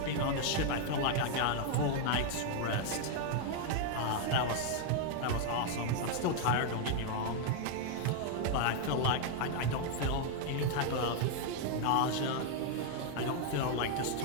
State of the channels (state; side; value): different; both; correlation 0.00